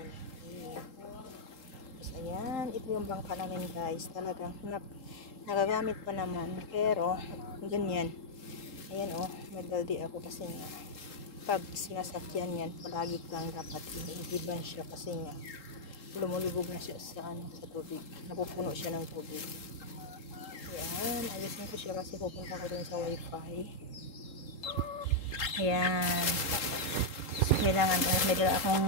Tapos, ayan, ito yung bangka namin guys. Talagang, nagagamit pa naman. Pero, ganyan. Ayan oh, may baldi ako kasi nga, pag sinasakyan yan, palagi kang dapat inihiban siya kasi nga, lumulubog na siya sa, sa tubig. Napupuno siya ng tubig. Ayan, ayusin ko siya kasi pupunta ko dun sa wifi. Ayan. So, kailangan, may dala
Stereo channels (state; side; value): late; right; 3.8 ms